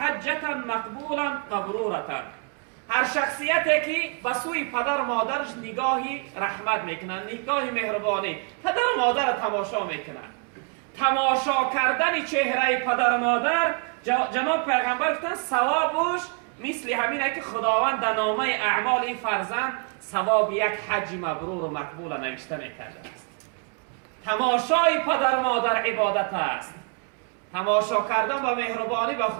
مقبولا مبرورة. هر شخصیتی که به سوی پدر و مادرش نگاهی رحمت میکنن، نگاهی مهربانی، پدر و مادر را تماشا میکنن. تماشا کردن چهره پدر و مادر، جناب پیغمبر گفتن ثوابش مثل همینه که خداوند در نامه اعمال فرزند ثواب یک حج مبرور و مقبول نوشته میکرده است. تماشای پدر و مادر عبادت است. تماشا کردن با مهربانی و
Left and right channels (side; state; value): left; quieter; 36.8 dB